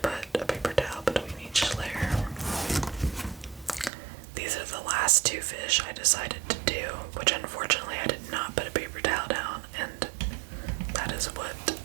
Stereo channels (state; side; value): drops out; left; at 3.9 s